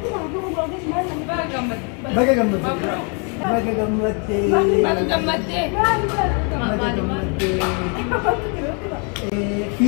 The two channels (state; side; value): quieter; right; 37.2 dB